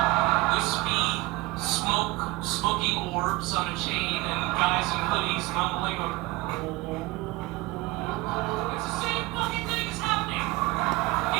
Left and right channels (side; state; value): left; quieter; 21.1 dB